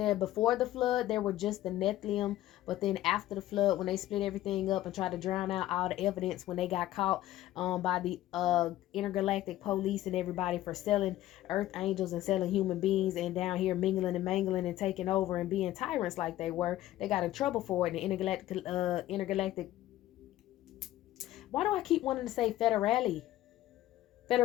before the flood there were just the Nephilim, but then after the flood, when they split everything up and tried to drown out all the evidence, when they got caught by the intergalactic police and everybody for selling earth angels and selling human beings, and down here mingling and mangling and taking over and being tyrants like they were, they got in trouble for it. And the intergalactic, why do I keep wanting to say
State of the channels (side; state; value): right; quieter; 14.4 dB